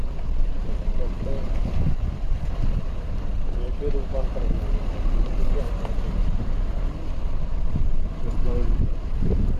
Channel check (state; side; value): identical; both; correlation 1.00